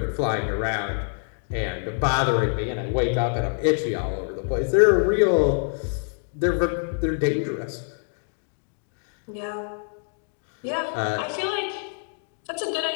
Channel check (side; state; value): right; silent; 58 dB below the other